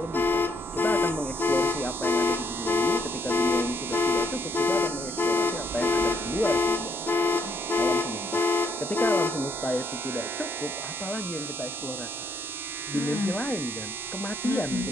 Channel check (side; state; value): both; normal; correlation 0.72